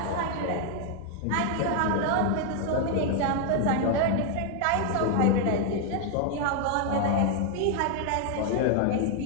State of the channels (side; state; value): both; different; correlation 0.00